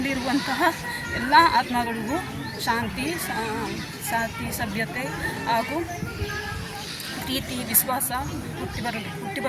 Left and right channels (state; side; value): identical; both; correlation 1.00